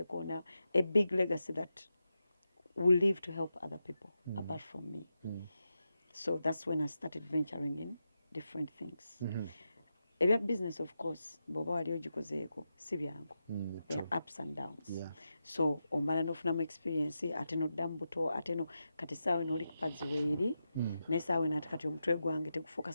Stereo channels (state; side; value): inverted; both; correlation -0.89